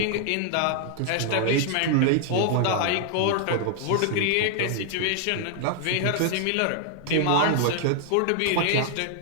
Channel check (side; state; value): both; different; correlation 0.00